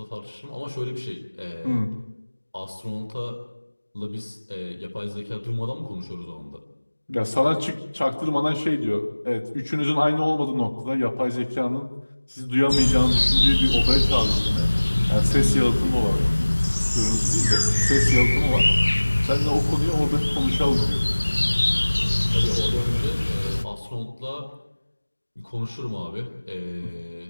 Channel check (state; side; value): inverted; both; correlation -1.00